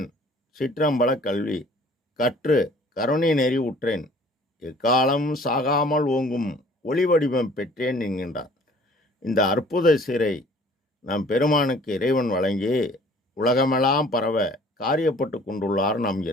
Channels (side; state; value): both; normal; correlation 0.53